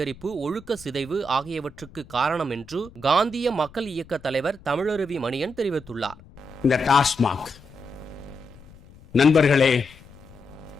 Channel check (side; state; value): left; noise; rumble, 22 dB below the sound